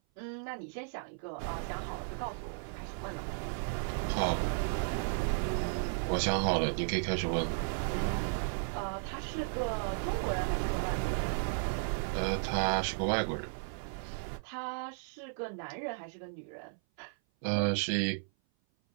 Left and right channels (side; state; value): left; silent; 55 dB below the other